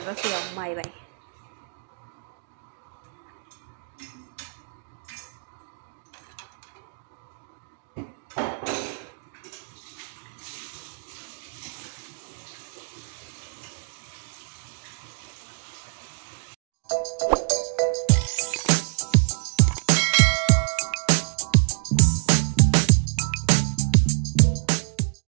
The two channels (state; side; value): silent; left; digital silence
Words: ያው ማይ ባይ